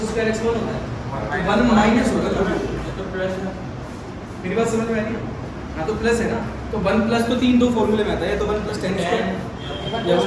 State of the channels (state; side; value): identical; both; correlation 1.00